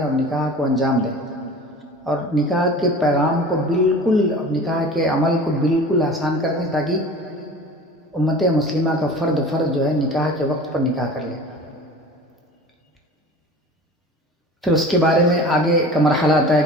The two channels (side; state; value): both; normal; correlation 0.39